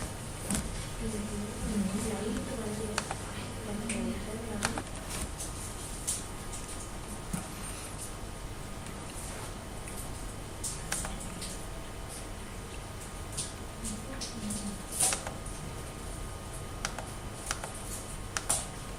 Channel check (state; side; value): identical; both; correlation 1.00